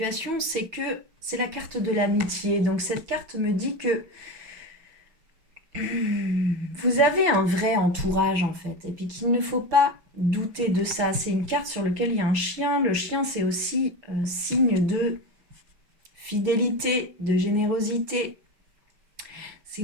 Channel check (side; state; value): left; late; 6.1 ms